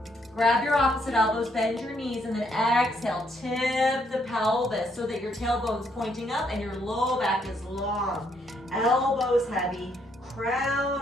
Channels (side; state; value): both; normal; correlation 0.72